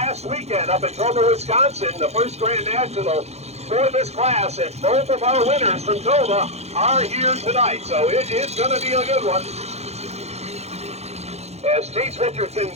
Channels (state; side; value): late; left; 0.31 ms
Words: weekend up in Dorr, Wisconsin, the first Grand National for this class, and both of our winners from Tova are here tonight, so it is going to be a good one. As Chase Richardson